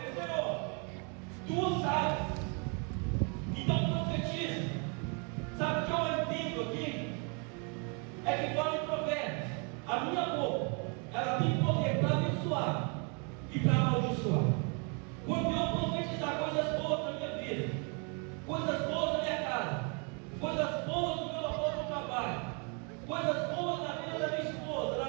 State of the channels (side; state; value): left; quieter; 36.0 dB